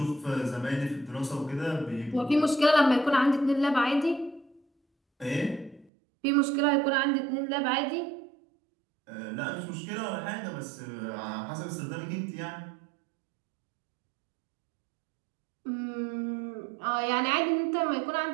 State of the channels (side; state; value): left; drops out; at 5.9 s